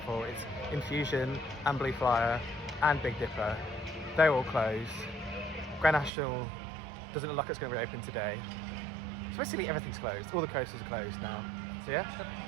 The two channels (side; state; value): left; drops out; at 6.1 s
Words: 4. It's Infusion and Blue Flyer and Big Dipper. They're all closed. Grand National doesn't look like it's going to reopen today. So basically everything's closed. All the coasters are closed now. So yeah,